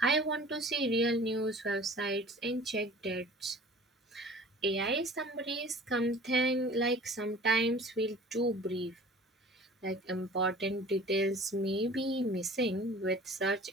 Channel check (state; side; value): normal; both; correlation 0.45